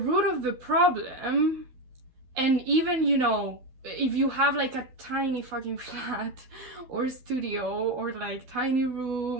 of the problem, and even, you know, if you have like a tiny fucking flat or studio or like tiny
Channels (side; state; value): left; late; 12 ms